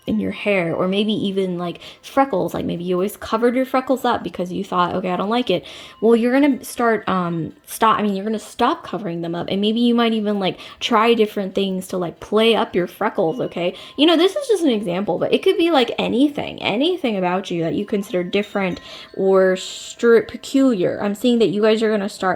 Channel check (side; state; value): both; identical; correlation 1.00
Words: in your hair, or maybe even like freckles. Like maybe you always covered your freckles up because you thought, okay, I don't like it. Well, you're gonna you're gonna stop covering them up, and maybe you might even like try different things to like play up your freckles, okay? This is just an example, but it could be like anything about you that you consider different or peculiar. I'm seeing that you guys are gonna